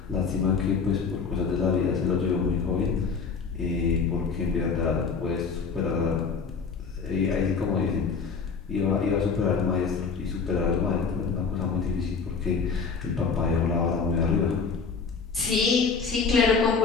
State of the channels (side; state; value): right; quieter; 5.3 dB